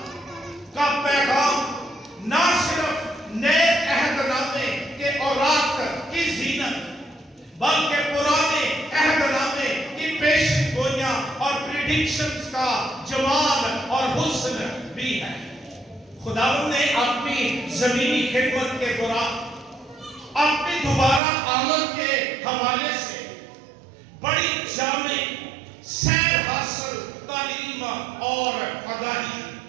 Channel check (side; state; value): left; drops out; at 21.2 s